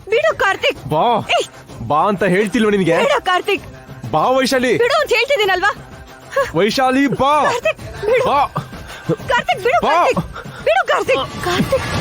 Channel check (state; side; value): identical; both; correlation 1.00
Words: ಬಿಡು ಕಾರ್ತಿಕ್. ಬಾ ಬಾ ಅಂತ ಹೇಳ್ತಿಲ್ವ ನಿನ್ಗೆ? ಬಿಡು ಕಾರ್ತಿಕ್. ಬಾ ವೈಶಾಲಿ. ಬಿಡು ಅಂತ ಹೇಳ್ತಿದ್ದೀನಲ್ವಾ? ವೈಶಾಲಿ ಬಾ. ಕಾರ್ತಿಕ್ ಬಿಡು. ಬಾ ಕಾರ್ತಿಕ್ ಬಿಡು. ಬಾ. ಕಾರ್ತಿಕ್ ಬಿಡು. ಕಾರ್ತಿಕ್ ಕಾರ್ತಿಕ್